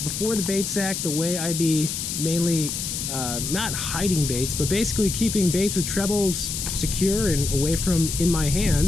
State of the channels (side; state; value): left; noise; hiss, 4 dB below the sound